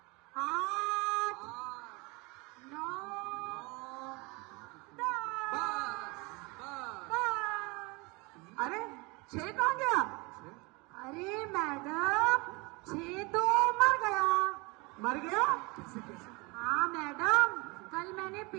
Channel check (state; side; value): quieter; left; 26.8 dB